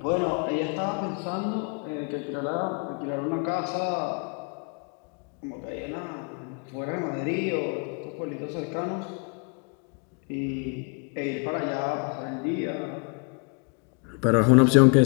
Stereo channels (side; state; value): right; quieter; 36.5 dB